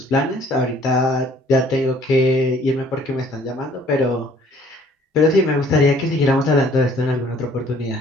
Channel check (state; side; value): normal; both; correlation 0.58